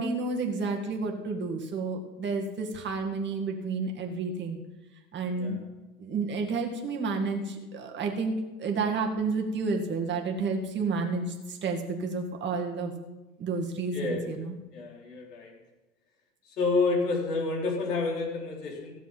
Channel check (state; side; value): normal; both; correlation 0.40